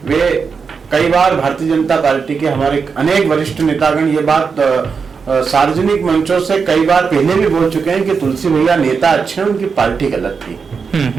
वे कई बार भारतीय जनता पार्टी के हमारे अनेक वरिष्ठ नेतागण ये बात सार्वजनिक मंचों से कई बार पहले भी बोल चुके हैं कि तुलसी भैया नेता अच्छे हैं, उनकी पार्टी गलत थी।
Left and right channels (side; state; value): left; quieter; 5.5 dB